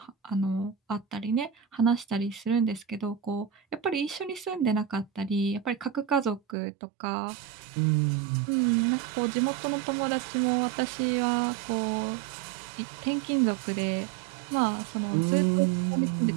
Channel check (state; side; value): drops out; left; at 6.6 s